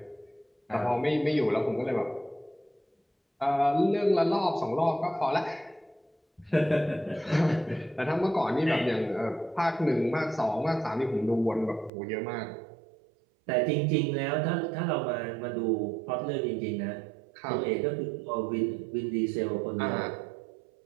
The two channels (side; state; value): left; drops out; at 11.9 s